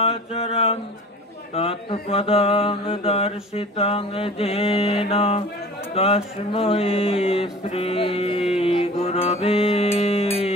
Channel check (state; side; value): normal; both; correlation 0.42